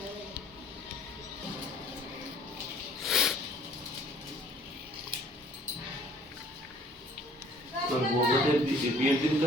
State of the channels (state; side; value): normal; both; correlation 0.55